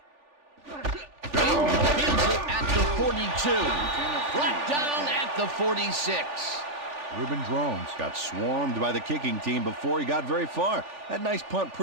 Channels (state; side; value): late; left; 3.4 ms